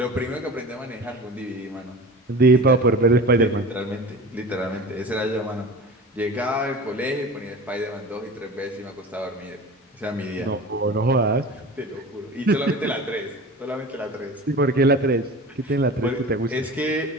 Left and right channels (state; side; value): normal; both; correlation 0.35